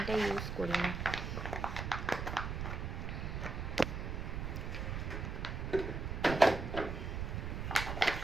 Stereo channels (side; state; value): right; noise; rumble, 3 dB below the sound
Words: ইউজ করি না।